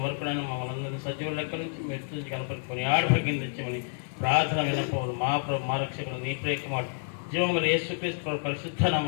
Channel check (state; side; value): silent; right; digital silence